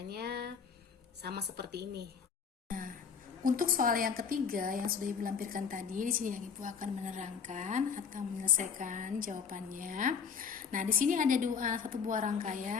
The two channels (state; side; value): quieter; right; 6.2 dB